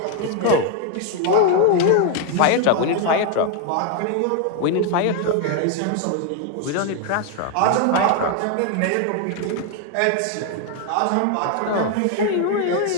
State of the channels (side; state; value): both; different; correlation 0.01